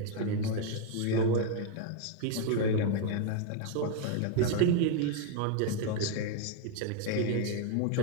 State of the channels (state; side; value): different; both; correlation 0.01